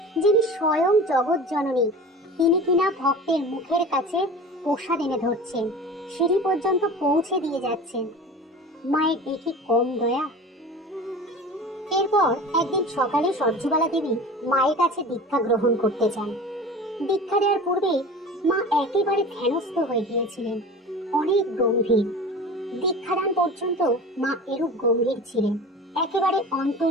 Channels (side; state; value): both; normal; correlation 0.36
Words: যিনি স্বয়ং জগৎ জননী, তিনি কিনা ভক্তের মুখের কাছে প্রসাদ এনে ধরছেন, সিঁড়ি পর্যন্ত পৌঁছে দিয়ে যাচ্ছেন। মায়ের এটি কম দয়া? এরপর একদিন সকালে সরজুবালা দেবী মায়ের কাছে দীক্ষা গ্রহণ করতে চান। দীক্ষা দেওয়ার পূর্বে মা একেবারে ধ্যানস্থ হয়ে গিয়েছিলেন, অনেক গম্ভীর। দীক্ষাদান পর্যন্ত মা এরূপ গম্ভীর ছিলেন, একেবারে